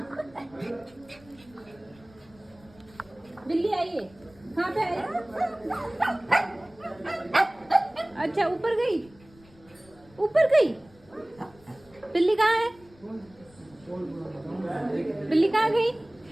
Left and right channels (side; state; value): left; noise; rumble, 26 dB below the sound